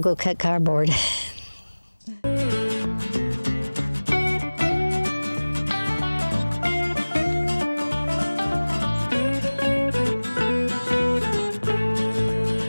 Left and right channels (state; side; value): inverted; both; correlation -1.00